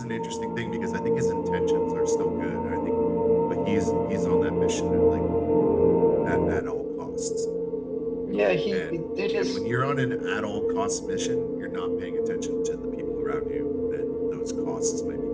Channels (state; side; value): identical; both; correlation 1.00